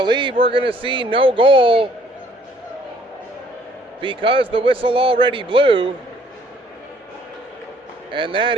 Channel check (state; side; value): normal; both; correlation 0.61